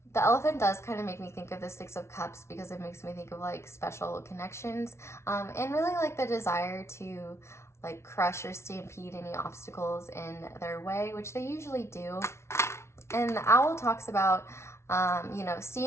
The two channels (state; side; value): late; right; 0.13 ms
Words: The Elephant does kind of make me think of the Six of Cups, because it makes me think of like special connections, and really like the desire to like crush or stampede any obstacles in their way, which they usually do. And the Owl talks about you know,